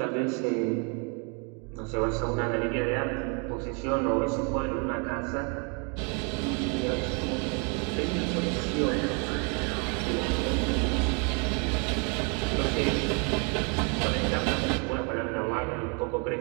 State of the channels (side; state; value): left; quieter; 35.4 dB